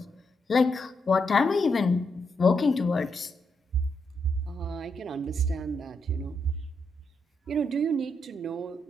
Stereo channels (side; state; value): both; normal; correlation 0.81